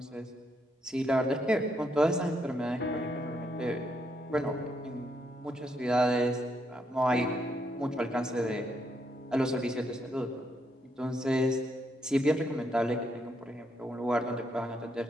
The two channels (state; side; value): normal; both; correlation 0.77